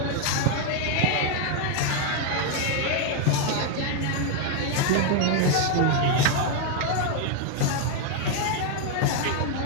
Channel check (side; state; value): both; different; correlation 0.01